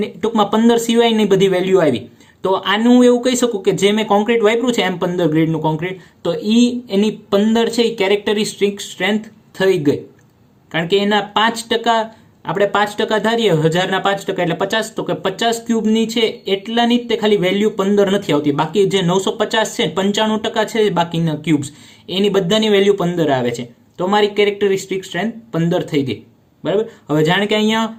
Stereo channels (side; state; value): both; identical; correlation 1.00